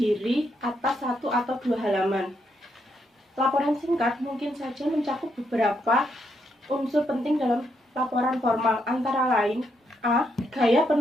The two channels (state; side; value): normal; both; correlation 0.78